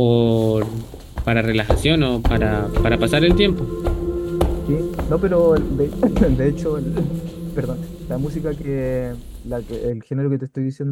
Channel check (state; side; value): identical; both; correlation 1.00